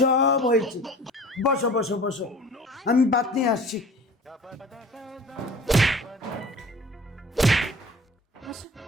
হয়েছে। বসো বসো বসো, আমি ভাত নিয়ে আসছি। আসো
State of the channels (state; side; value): normal; both; correlation 0.44